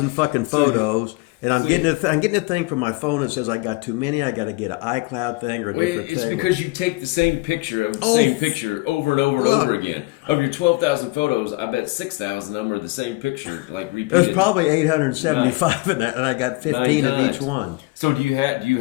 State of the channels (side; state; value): right; quieter; 23.2 dB